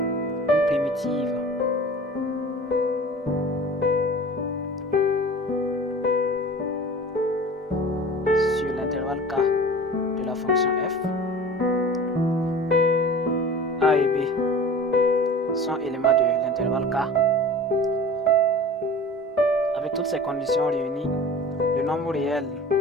une primitive sur l'intervalle k de la fonction f. A et B sont éléments de l'intervalle k. Avec toutes ces conditions réunies, le nombre réel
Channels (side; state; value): both; normal; correlation 0.40